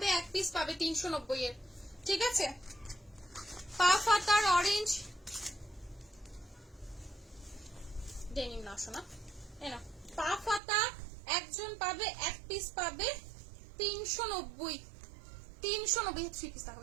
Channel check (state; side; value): drops out; left; at 10.6 s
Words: এক পিস পাবে 390 এর। ঠিক আছে, পা ফাতার অরেঞ্জ ডেনিম না শোনা, এরা পা ফাতা একজন পাবে, এক পিস পাবে 390। 390 3 পিস